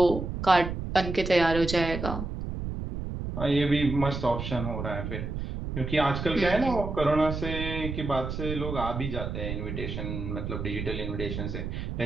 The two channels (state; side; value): noise; right; rumble, 5 dB below the sound